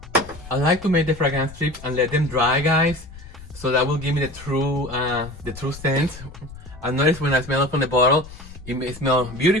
I like to make the fragrance strips and let them dry, guys, so that will give me the true scent. I noticed when I smell it from the bottle, it may smell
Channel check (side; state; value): left; noise; rumble, 16 dB below the sound